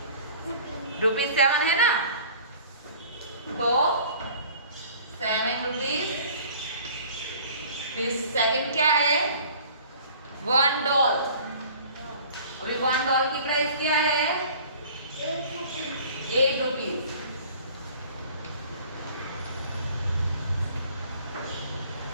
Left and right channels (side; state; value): both; inverted; correlation -0.48